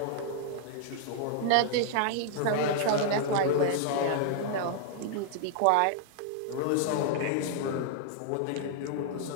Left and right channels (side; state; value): both; different; correlation -0.01